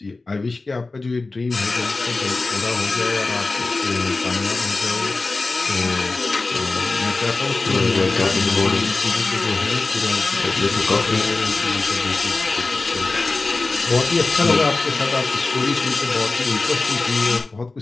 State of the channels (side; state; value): right; quieter; 3.5 dB